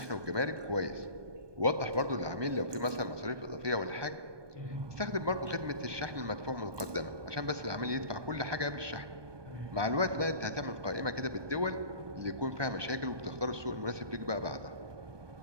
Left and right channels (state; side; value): late; left; 1.2 ms